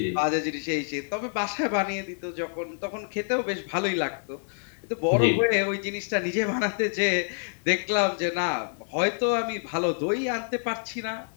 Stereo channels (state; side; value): silent; right; digital silence